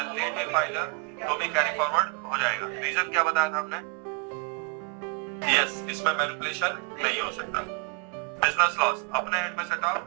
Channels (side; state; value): left; quieter; 31.6 dB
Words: लेट भी फाइल हो तो भी कैरी फॉरवर्ड हो जाएगा। रीजन क्या बताया था हमने? यस, इसमें मैनिपुलेशन नहीं हो सकता। बिजनेस लॉस अपने हेड में सेटअप